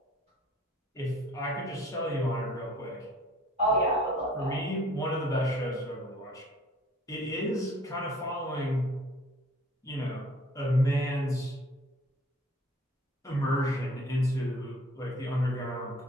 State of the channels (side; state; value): both; normal; correlation 0.53